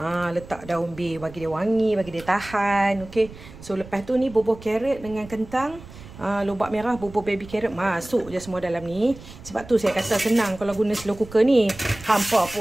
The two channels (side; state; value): right; noise; rumble, 17 dB below the sound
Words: Letak daun bay bagi dia wangi, bagi dia tahan. Okey. So lepas tu ni bubuh carrot dengan kentang. Lobak merah, bubur baby carrot masuk je semua dalam ni. Sebab tu saya kata senang kalau guna slow cooker ni. Hampa